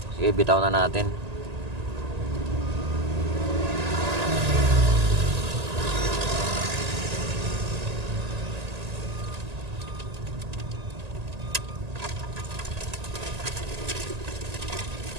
Sige, bitaw na natin.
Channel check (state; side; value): late; left; 1.8 ms